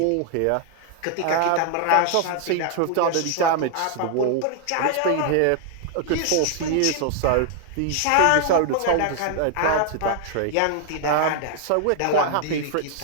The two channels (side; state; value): both; different; correlation 0.00